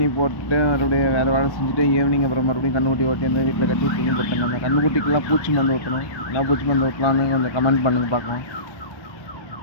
போட்டு மறுபடியும் வேறு வேலை செஞ்சுட்டு ஈவினிங் அப்புறம் மறுபடியும் கன்றுக்குட்டி ஓட்டி அந்த வீட்டில் கட்டி தீனி போட்டேங்க. அந்த கன்றுக்குட்டிக்கெல்லாம் பூச்சி மருந்து ஊற்றணும். என்ன பூச்சி மருந்து ஊற்றலான்னு கொஞ்சம் கமெண்ட் பண்ணுங்க பார்க்கலாம்.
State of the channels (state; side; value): late; right; 1.1 ms